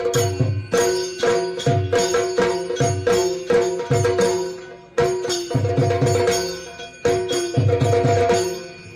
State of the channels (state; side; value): identical; both; correlation 1.00